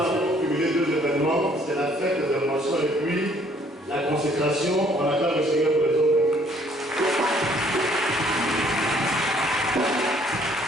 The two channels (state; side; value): normal; both; correlation 0.62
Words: pour cumuler deux événements. C'est la fête des émotions et puis la consécration. On acclame le Seigneur pour les autres.